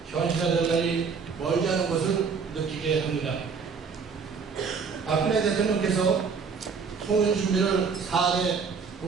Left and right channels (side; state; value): left; quieter; 5.6 dB